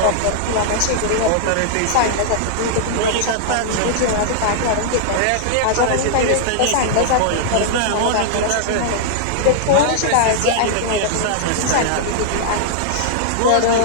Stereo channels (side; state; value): both; different; correlation -0.01